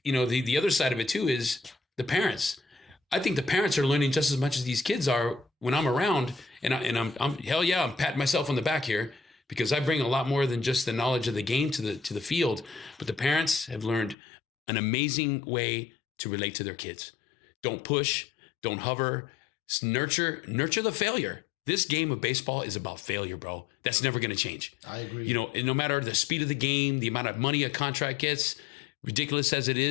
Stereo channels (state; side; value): drops out; right; at 14.2 s